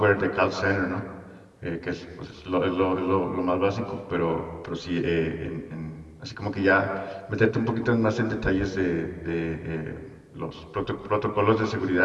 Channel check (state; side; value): identical; both; correlation 1.00